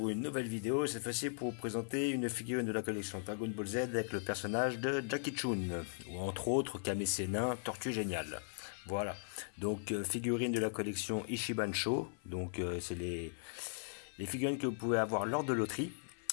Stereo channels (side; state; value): right; silent; 52 dB below the other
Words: une nouvelle vidéo. Cette fois-ci pour vous présenter une figurine de la collection Dragon Ball Z avec le personnage de Jackie Chun, ou entre autres Kame Sennin, Tortue Géniale. Voilà, donc figurine de la collection Ichiban Sho. Donc c'est les figurines que vous pouvez avoir lors de loterie.